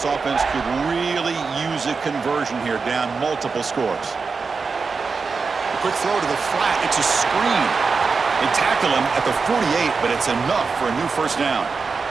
offense could really use a conversion here, down multiple scores. A quick throw to the flat. It's a screen. They tackle him at the 48, but it's enough for a new first down.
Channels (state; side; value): quieter; left; 4.8 dB